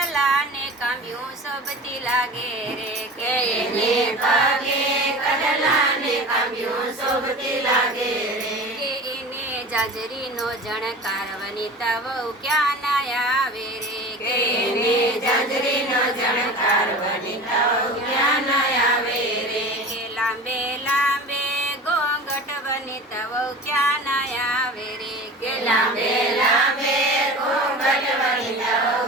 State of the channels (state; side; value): normal; both; correlation 0.36